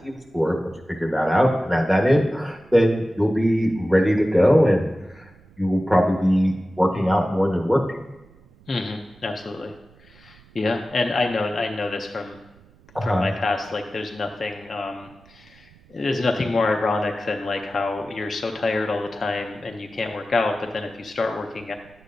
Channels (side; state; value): right; noise; rumble, 27 dB below the sound